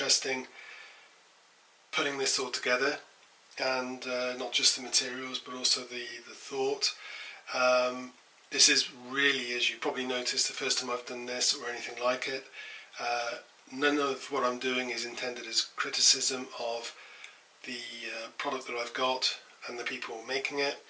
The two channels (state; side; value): identical; both; correlation 1.00